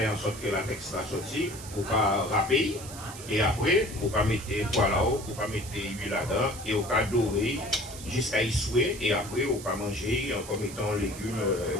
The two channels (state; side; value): noise; right; hiss, 13 dB below the sound